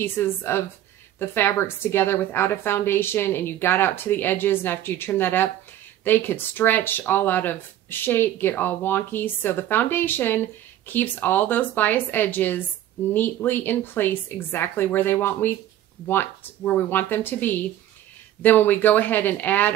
of the fabrics together without a foundation and you got out to the edges, and after you trim that up, they could stretch all out of shape, get all wonky. So the foundation keeps all those bias edges neatly in place exactly where we want them to be. Then when we go ahead and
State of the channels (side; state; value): left; quieter; 12.5 dB